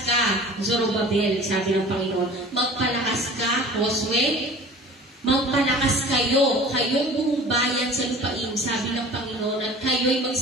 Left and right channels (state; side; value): normal; both; correlation 0.42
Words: ka, Zorobabel, sabi ng Panginoon. Magpalakas ka, Josue. Magpalakas kayo, kayong buong bayan sa lupain, sabi ng Panginoon, at kayo'y